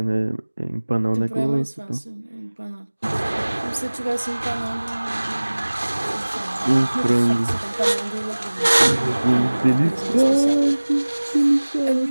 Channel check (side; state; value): both; inverted; correlation -1.00